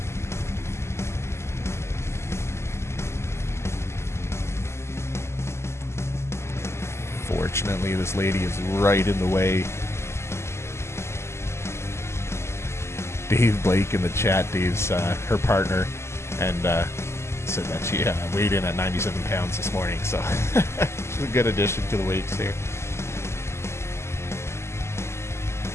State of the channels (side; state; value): right; late; 0.13 ms